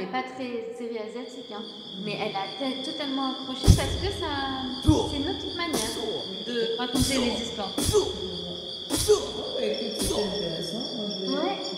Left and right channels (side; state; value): both; identical; correlation 1.00